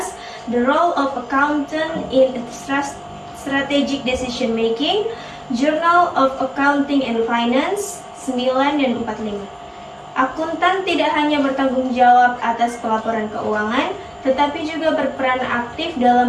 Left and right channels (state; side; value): identical; both; correlation 1.00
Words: The Role of Accountant in Strategic Decision Making, Journal of Accounting and Finance, 9 dan 45. Akuntan tidak hanya bertanggung jawab atas pelaporan keuangan, tetapi juga berperan aktif